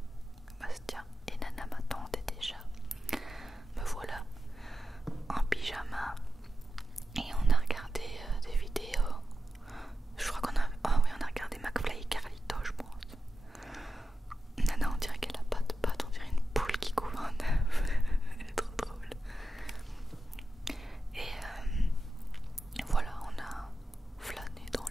Bastien et Nana m'attendaient déjà. Me voilà en pyjama et on a regardé des vidéos. Je crois qu'on a... Oh oui, on a regardé McFly et Carlito, je pense. Nana, on dirait qu'elle a pas de pattes, on dirait une poule qui couvre un œuf. Elle est trop drôle. Et voilà, on a flâné dans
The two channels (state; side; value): normal; both; correlation 0.91